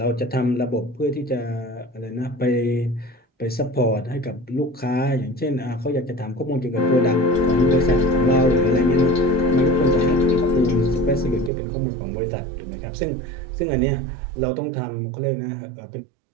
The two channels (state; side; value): drops out; left; at 11.5 s